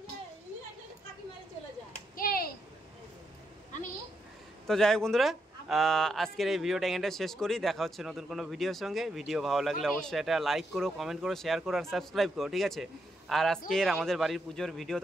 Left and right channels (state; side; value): normal; both; correlation 0.80